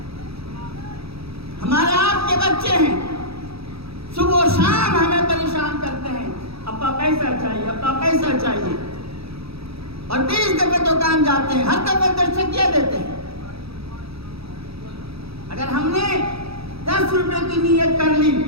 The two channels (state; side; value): late; left; 0.77 ms